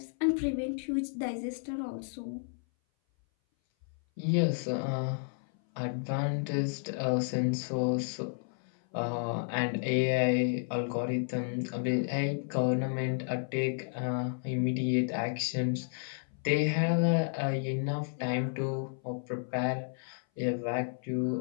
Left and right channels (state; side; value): silent; right; 57 dB below the other